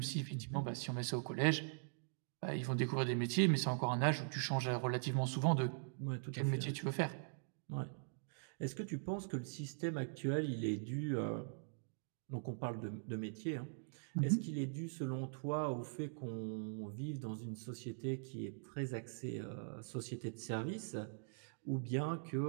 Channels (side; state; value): left; silent; digital silence